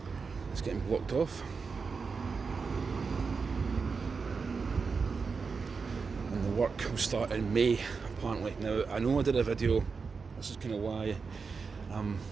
it's getting blocked off. And the work will start in May, apparently. Now, I know I did a video, this is kind of why I'm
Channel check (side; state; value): left; quieter; 5.0 dB